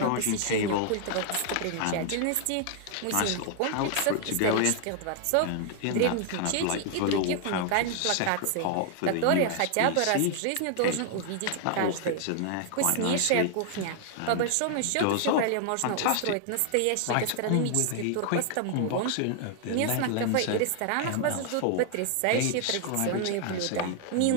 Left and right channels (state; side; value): different; both; correlation 0.00